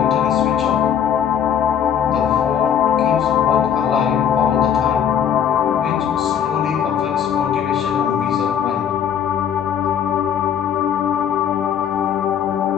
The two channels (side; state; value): right; quieter; 8.7 dB